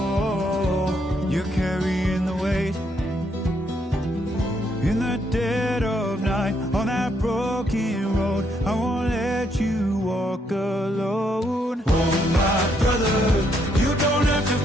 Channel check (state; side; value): normal; both; correlation 0.74